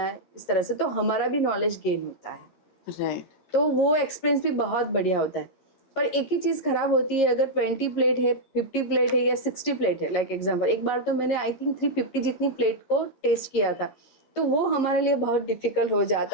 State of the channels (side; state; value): right; late; 13 ms